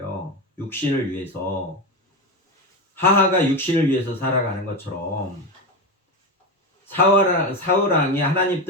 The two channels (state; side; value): normal; both; correlation 0.17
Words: 육신을 위해서. 하하가 육신을 위해서 살아가는 것처럼 사울왕이 하나님